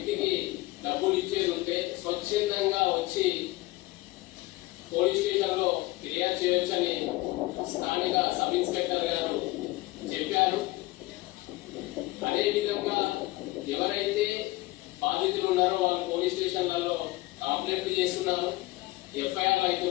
డబ్బులు ఇచ్చేది ఉంటే స్వచ్ఛందంగా వచ్చి పోలీస్ స్టేషన్ లో ఫిర్యాదు చేయొచ్చని స్థానిక సబ్ ఇన్స్పెక్టర్ గారు చెప్పారు. అదేవిధంగా ఎవరైతే బాధితులు ఉన్నారో వాళ్ళు పోలీస్ స్టేషన్లలో కంప్లైంట్లు చేస్తున్నారు, ఎఫ్ఐఆర్లు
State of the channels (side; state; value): right; quieter; 19.8 dB